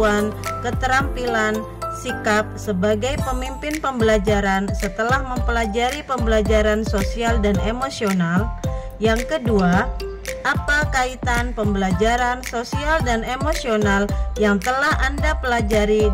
keterampilan, sikap sebagai pemimpin pembelajaran setelah mempelajari pembelajaran sosial dan emosional? Yang kedua, apa kaitan pembelajaran sosial dan emosional yang telah Anda pelajari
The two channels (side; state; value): both; identical; correlation 1.00